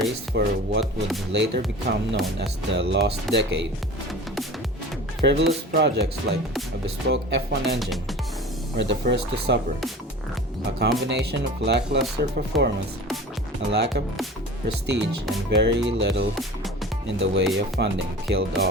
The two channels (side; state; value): both; normal; correlation 0.38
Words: for what would later become known as the Lost Decade, frivolous projects like a bespoke F1 engine were the first to suffer. A combination of lackluster performance, a lack of prestige, and very little in the way of funding killed